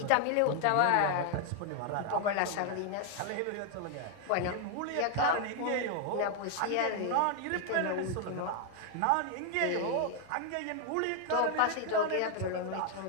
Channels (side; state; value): both; different; correlation 0.00